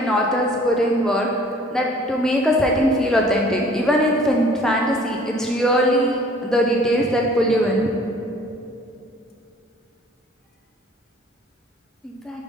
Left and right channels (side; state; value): both; normal; correlation 0.53